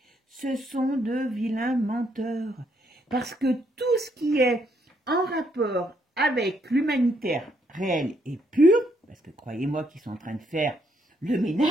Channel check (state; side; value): normal; both; correlation 0.73